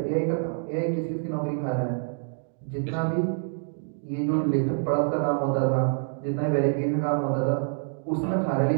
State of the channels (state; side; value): silent; left; digital silence